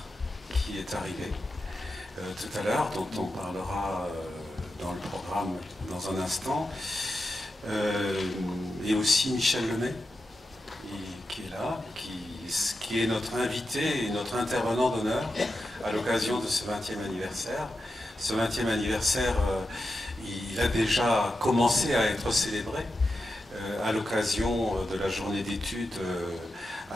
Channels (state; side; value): normal; both; correlation 0.89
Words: qui est arrivée tout à l'heure, dont on parlera dans le programme dans un instant. Et aussi Michel Lemay, qui est là, qui est notre invité et notre intervenant d'honneur à l'occasion de ce 20e anniversaire. Ce 20e anniversaire, il a déjà commencé à être célébré à l'occasion de la journée d'études